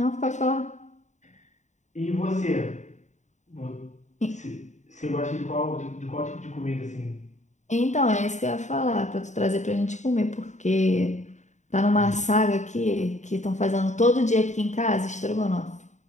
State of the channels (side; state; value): right; late; 0.34 ms